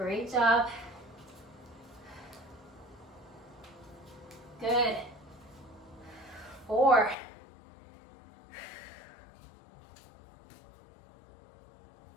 job. Good. 4.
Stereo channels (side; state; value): right; drops out; at 7.2 s